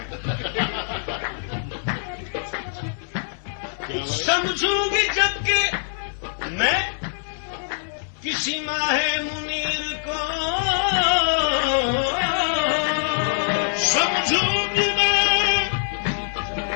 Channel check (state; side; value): silent; right; 56 dB below the other